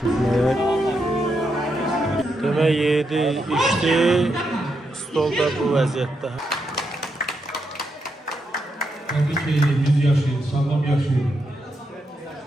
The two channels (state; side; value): normal; both; correlation 0.82